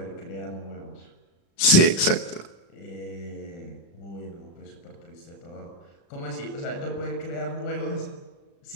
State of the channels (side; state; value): right; late; 36 ms